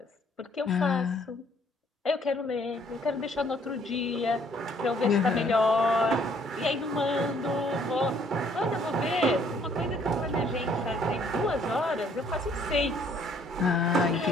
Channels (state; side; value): normal; both; correlation 0.63